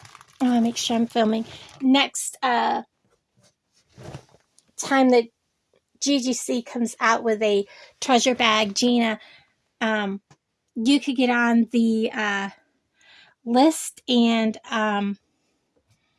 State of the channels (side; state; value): both; identical; correlation 1.00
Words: want to make sure I'm filming, next time that GGC comes out with a treasure bag, Gina, you could get on the list and